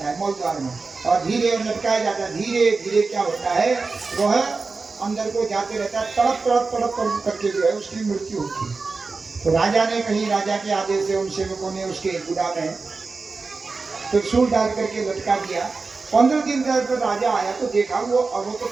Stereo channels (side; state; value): left; quieter; 4.2 dB